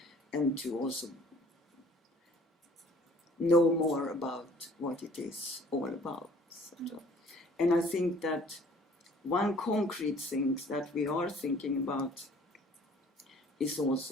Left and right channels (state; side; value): normal; both; correlation 0.54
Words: and to also know more about what it is all about. Sort of. And I think that one concrete thing that we are thinking about is